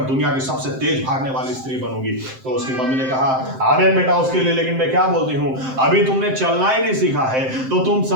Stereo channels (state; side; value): late; left; 7.7 ms